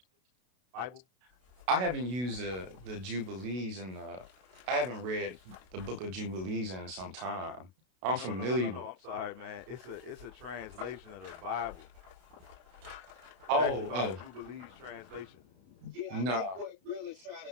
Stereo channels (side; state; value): left; late; 32 ms